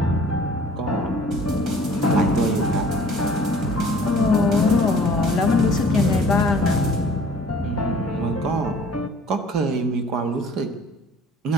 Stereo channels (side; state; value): both; normal; correlation 0.52